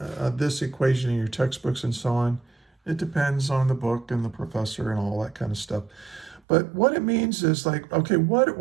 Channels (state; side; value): drops out; left; at 6.4 s